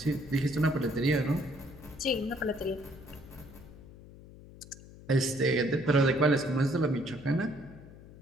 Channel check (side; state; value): left; noise; hum, 19 dB below the sound